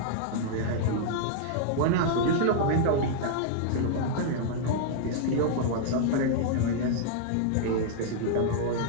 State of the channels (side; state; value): both; different; correlation -0.01